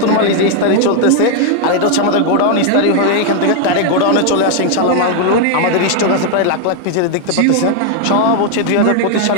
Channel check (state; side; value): different; both; correlation 0.00